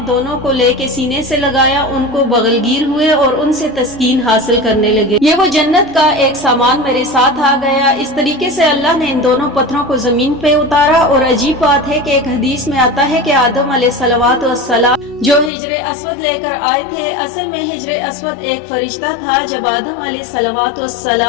दोनों को लेके सीने से लगाया, उनको बगलगीर हुए और उनसे तस्कीन हासिल करने लगे। ये वो जन्नत का एक सामान मेरे साथ आ गया। इस तरीके से अल्लाह ने इन दोनों पत्थरों को जमीन पे उतारा। और अजीब बात है कि एक हदीस में आता है कि आदम अलैहिस्सलाम जो हिजरे अस्वद लेकर आए थे, असल में हिजरे अस्वद एक फरिश्ता था। जब आदम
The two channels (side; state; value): right; drops out; at 15.5 s